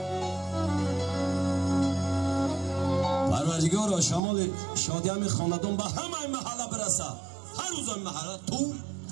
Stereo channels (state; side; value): drops out; left; at 4.2 s